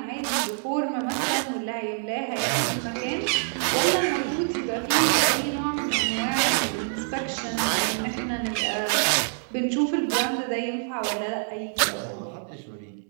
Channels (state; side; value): silent; left; 61 dB below the other